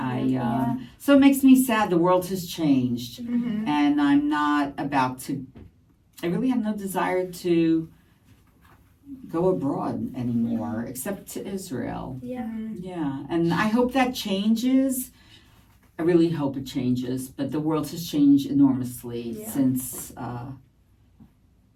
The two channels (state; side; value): identical; both; correlation 1.00